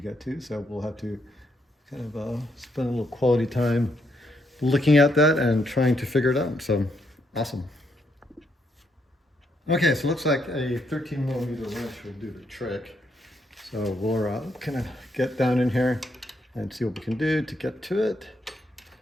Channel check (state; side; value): normal; both; correlation 0.76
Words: get to, so we'll have to kind of spend a little quality time looking at that and trying to figure it out. So, awesome. Okay, so it looks like a 13mm wrench will do the trick. So we'll kind of get down in here and see what we can do to get to it.